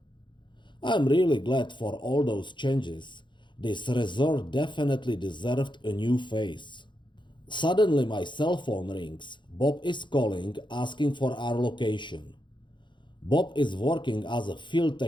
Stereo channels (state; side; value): late; right; 0.23 ms